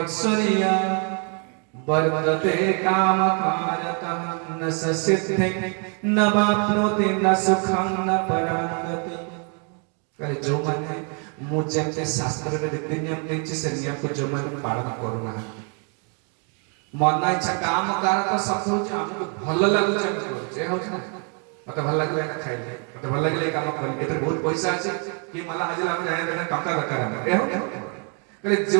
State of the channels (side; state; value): left; quieter; 38.8 dB